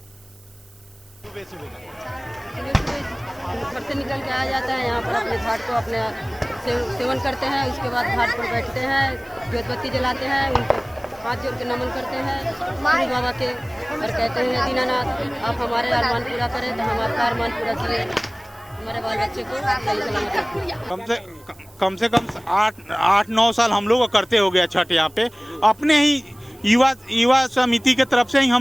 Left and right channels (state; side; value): noise; right; hiss, 29 dB below the sound